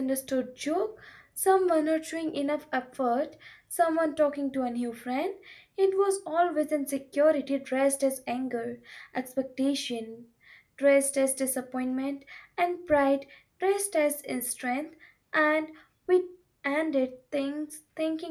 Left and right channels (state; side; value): identical; both; correlation 1.00